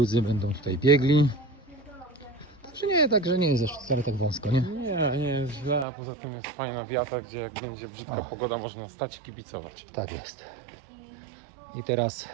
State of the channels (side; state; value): left; drops out; at 5.9 s